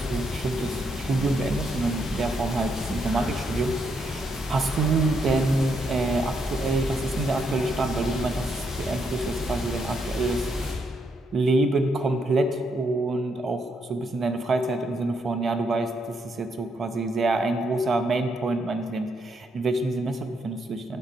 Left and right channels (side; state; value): both; normal; correlation 0.77